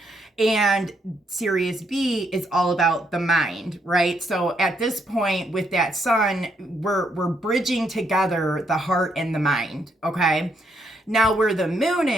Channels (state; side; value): normal; both; correlation 0.75